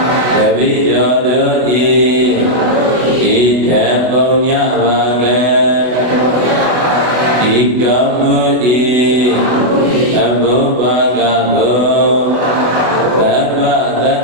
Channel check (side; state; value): left; late; 24 ms